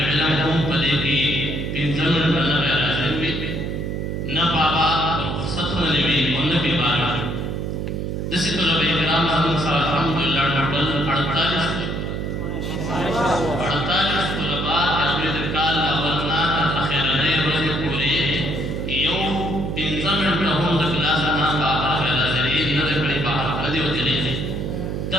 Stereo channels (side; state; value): right; noise; hum, 3 dB below the sound